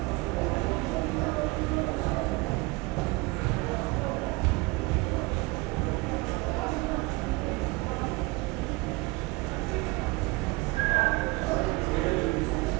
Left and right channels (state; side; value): quieter; left; 24.3 dB